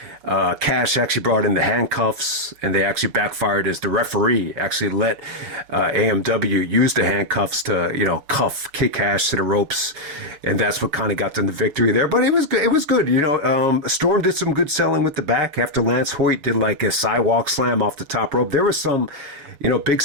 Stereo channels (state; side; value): late; left; 6.8 ms